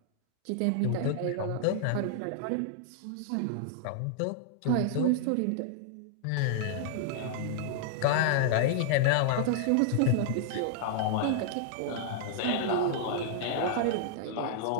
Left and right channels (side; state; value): both; different; correlation -0.01